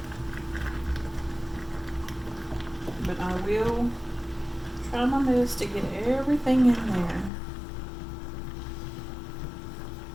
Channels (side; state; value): right; drops out; at 7.3 s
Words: But I will try my best to get everything in there.